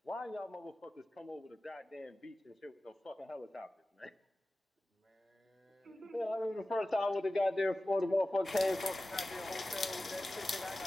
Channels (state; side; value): normal; both; correlation 0.96